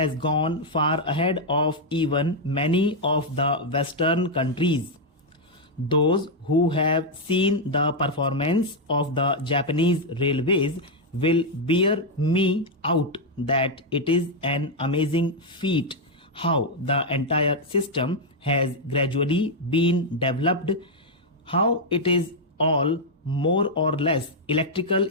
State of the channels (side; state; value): both; normal; correlation -0.01